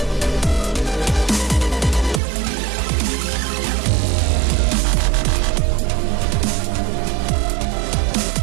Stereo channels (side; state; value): left; drops out; at 2.2 s